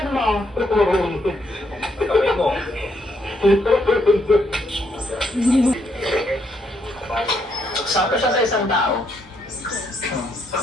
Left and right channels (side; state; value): both; normal; correlation 0.75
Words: mo. Sakto siya sa isang tao.